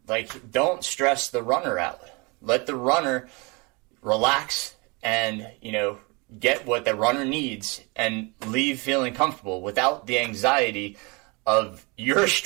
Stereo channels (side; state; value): left; quieter; 28.5 dB